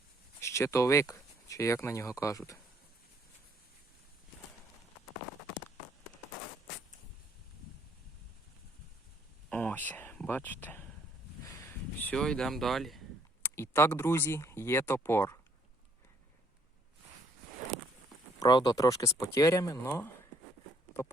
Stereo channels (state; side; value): normal; both; correlation 0.66